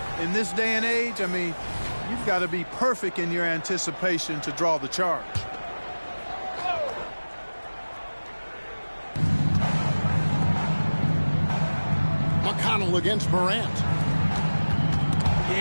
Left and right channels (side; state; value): both; inverted; correlation -1.00